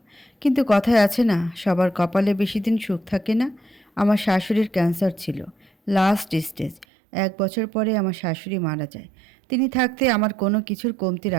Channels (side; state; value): left; drops out; at 6.9 s